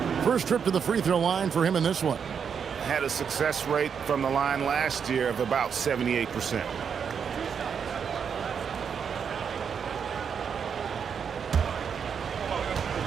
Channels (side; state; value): left; quieter; 7.0 dB